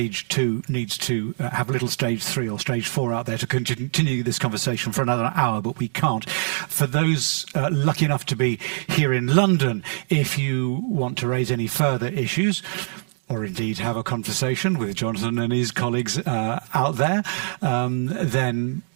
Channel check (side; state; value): left; silent; digital silence